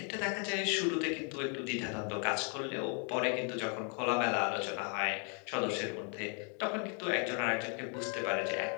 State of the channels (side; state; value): right; quieter; 40.0 dB